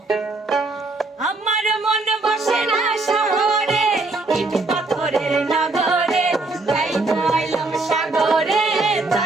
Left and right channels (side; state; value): left; quieter; 3.3 dB